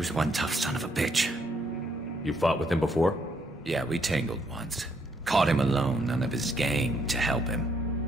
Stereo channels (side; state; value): both; normal; correlation 0.72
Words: one tough son of a bitch. You fought with him before? Yeah, we tangled once. Caught him alone, none of his gang to help